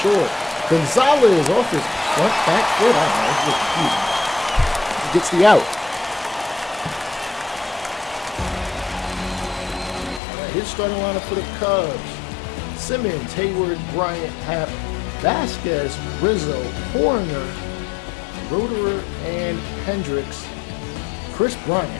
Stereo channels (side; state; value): right; drops out; at 10.2 s